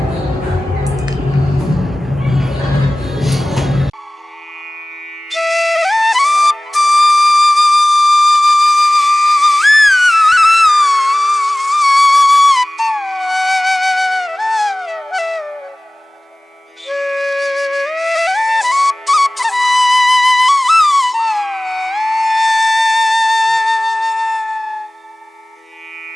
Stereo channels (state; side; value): normal; both; correlation 0.98